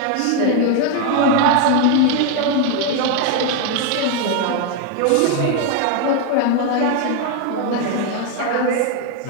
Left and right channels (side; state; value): both; different; correlation 0.01